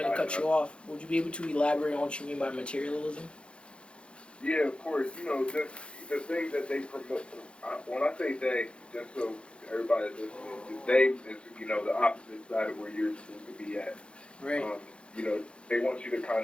cut you off. Would you be able to elaborate on what you mean by materialism? Yeah, of course. You know, the things that they promote. When I say they, just so everybody's listening, they is, you know, the opposite side of where you're supposed to be at. Right. You know, they want you to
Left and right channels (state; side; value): late; right; 0.057 ms